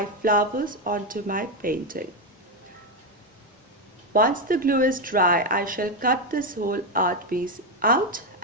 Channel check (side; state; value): both; normal; correlation 0.08